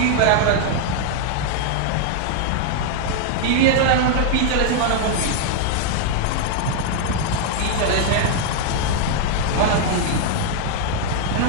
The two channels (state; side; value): different; both; correlation 0.00